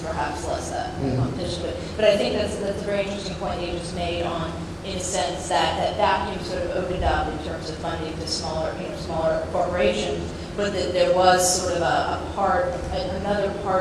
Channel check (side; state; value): both; identical; correlation 1.00